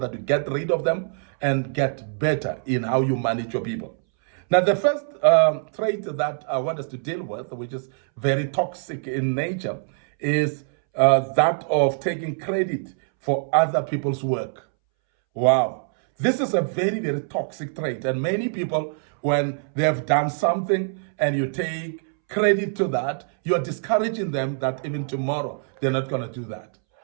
you get rid of them and get better in how you manage your people. Now, the first trait that I want us to deal with, which is very toxic in nature, is that of taking credit for other people's work. Wow. This is a very, very toxic trait. And many people, when they have done something and you take credit to that, you're discouraging them that even tomorrow they're not going to do that.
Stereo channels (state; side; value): silent; left; 63 dB below the other